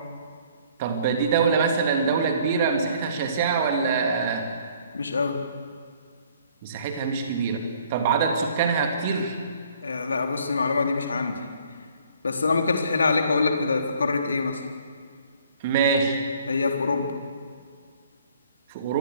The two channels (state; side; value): inverted; both; correlation -0.59